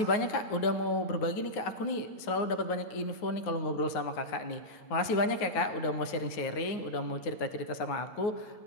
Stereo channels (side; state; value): right; late; 9.4 ms